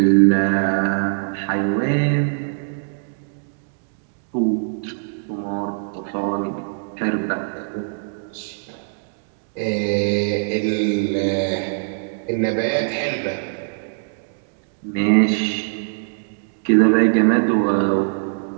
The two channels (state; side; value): silent; left; digital silence